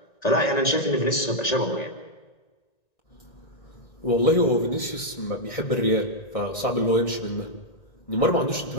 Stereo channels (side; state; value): right; late; 1.9 ms